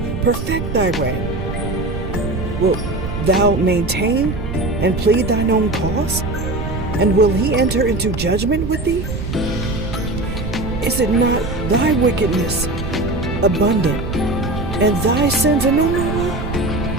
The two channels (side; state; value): right; noise; rumble, 5 dB below the sound